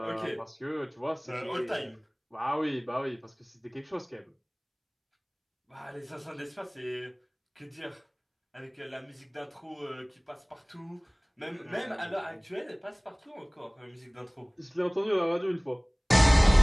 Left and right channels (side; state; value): both; identical; correlation 1.00